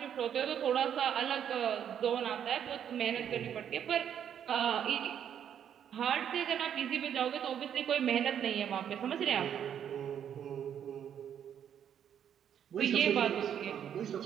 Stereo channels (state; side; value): quieter; left; 9.1 dB